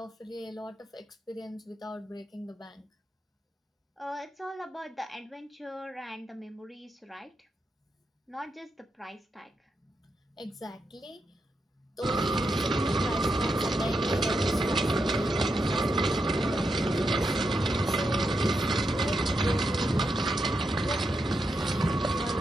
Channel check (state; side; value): normal; both; correlation 0.84